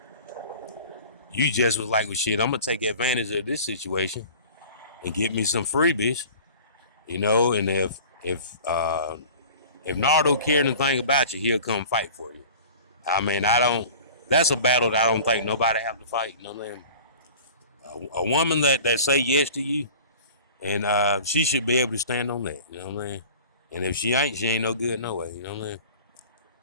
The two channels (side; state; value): both; inverted; correlation -0.42